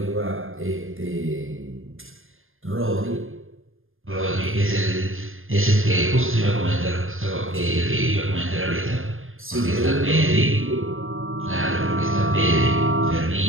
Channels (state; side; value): late; left; 0.59 ms